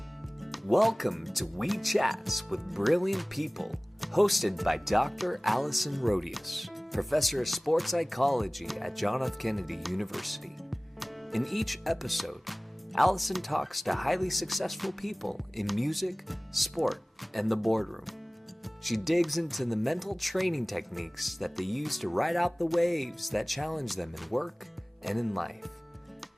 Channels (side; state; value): both; normal; correlation 0.98